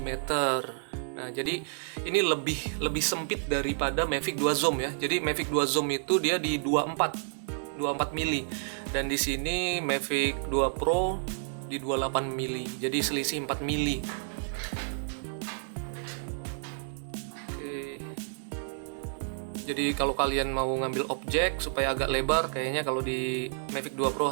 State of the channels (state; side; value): silent; left; 58 dB below the other